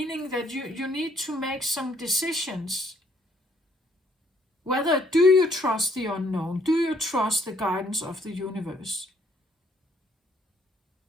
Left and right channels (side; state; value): both; normal; correlation 0.67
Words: that you need to make some decisions. Whether do you trust the unknown? Do you trust the guidance of the universe?